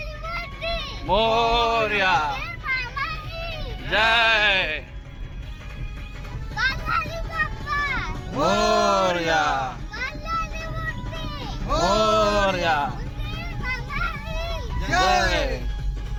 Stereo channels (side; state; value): both; identical; correlation 1.00